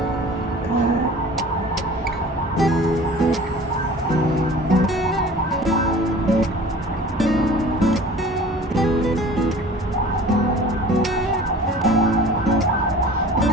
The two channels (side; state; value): both; normal; correlation 0.44